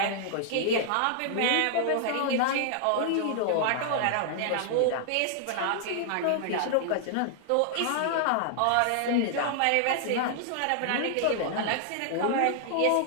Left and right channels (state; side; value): different; both; correlation -0.01